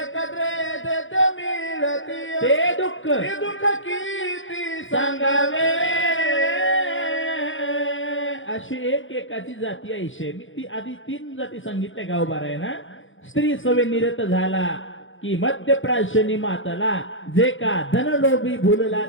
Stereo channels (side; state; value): right; late; 0.57 ms